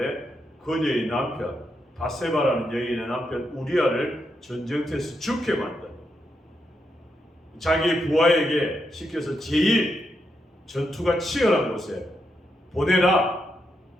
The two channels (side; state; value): both; normal; correlation 0.82